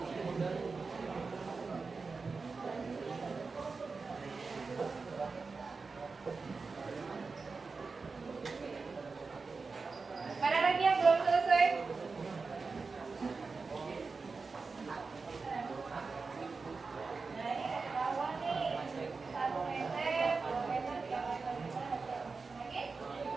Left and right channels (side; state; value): left; quieter; 4.4 dB